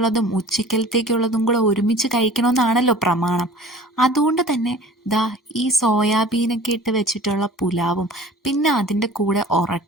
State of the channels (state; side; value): normal; both; correlation 0.44